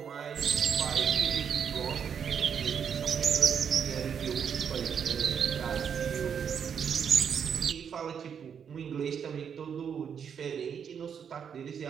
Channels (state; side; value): quieter; left; 7.5 dB